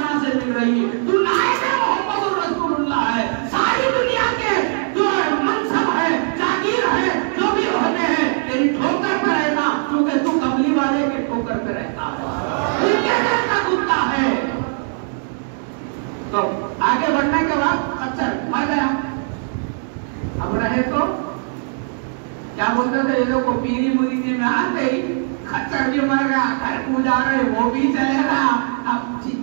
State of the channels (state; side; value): silent; left; digital silence